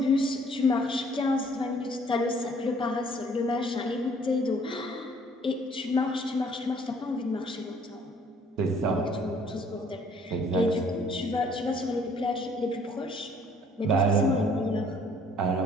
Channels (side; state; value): both; normal; correlation 0.59